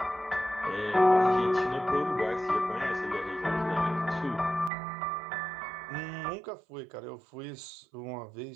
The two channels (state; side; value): drops out; left; at 4.7 s